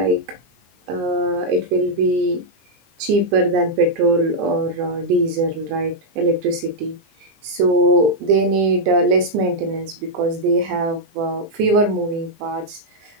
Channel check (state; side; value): late; left; 20 ms